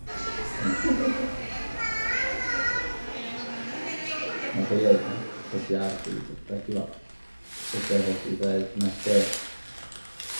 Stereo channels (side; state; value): both; inverted; correlation -1.00